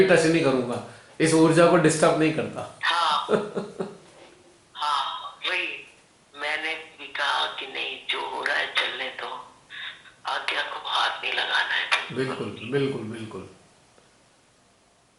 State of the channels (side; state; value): both; identical; correlation 1.00